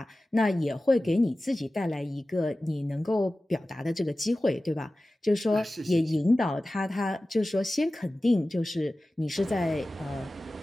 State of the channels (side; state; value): both; normal; correlation 0.96